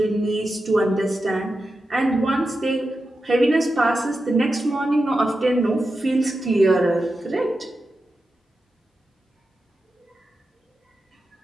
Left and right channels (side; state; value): both; normal; correlation 0.90